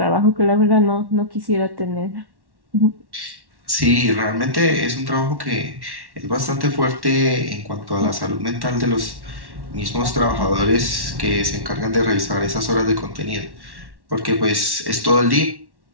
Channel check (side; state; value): left; late; 1.1 ms